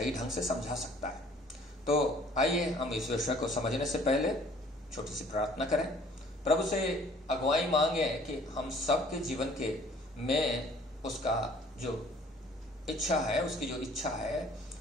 ढंग से समझा सकता है। तो आइए हम इस विषय को समझने से पहले छोटी सी प्रार्थना करें, प्रभु से अगुवाई मांगे कि हम सबके जीवन के में उसका जो इच्छा है, उसकी जो इच्छा है,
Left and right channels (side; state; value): both; normal; correlation 0.55